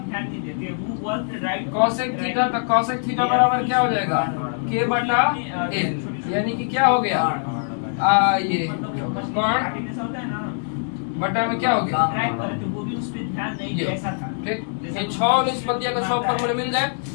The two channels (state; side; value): silent; right; digital silence